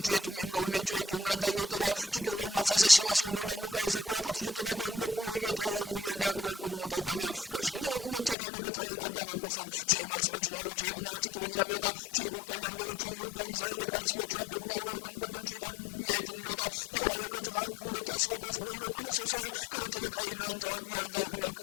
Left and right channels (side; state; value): right; drops out; at 8.3 s